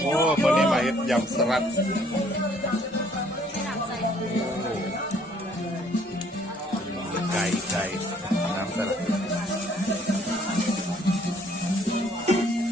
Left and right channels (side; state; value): both; normal; correlation 0.62